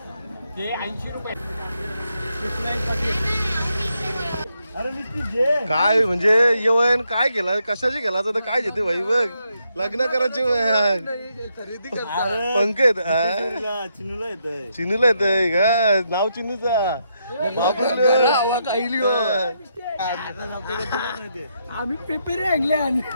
काय म्हणजे येवन काय केला, कशाची केला तर काय घेते भाई. बघ लग्न करायचे पंकज चिनूला येतंय का नाव चिनूचा.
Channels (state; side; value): inverted; both; correlation -0.79